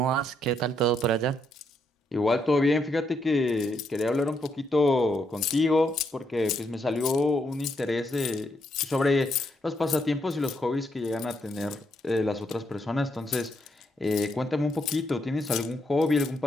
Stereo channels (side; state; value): both; normal; correlation 0.76